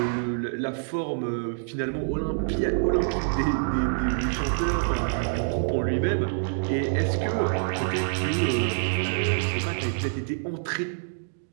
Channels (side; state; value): left; silent; digital silence